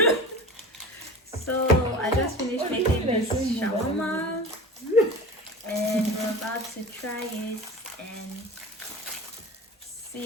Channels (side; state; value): both; normal; correlation 0.34